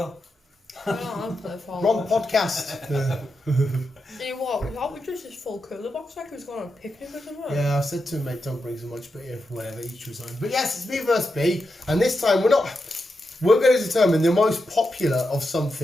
I don't play Fallout. Wrong podcast. You know what? We thought we just this full cooler box like we was going on a picnic or something. Yeah, I said to him, mate, don't bring so much, but yeah, whatever, each was on. But yes, it's B versus B, and this time we're going to determine the most popular of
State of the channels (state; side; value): normal; both; correlation 0.87